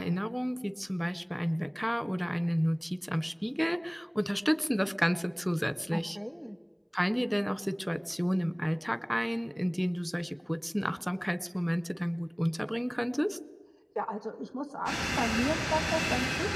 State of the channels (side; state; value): both; identical; correlation 1.00